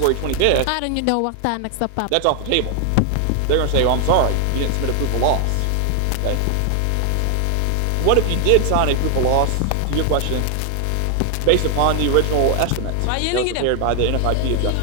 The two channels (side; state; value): both; different; correlation 0.00